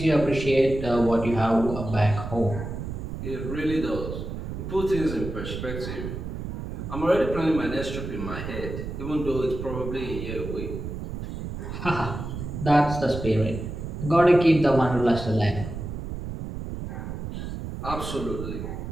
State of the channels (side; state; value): right; noise; rumble, 7 dB below the sound